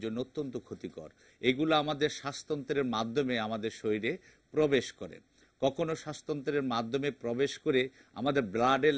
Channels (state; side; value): identical; both; correlation 1.00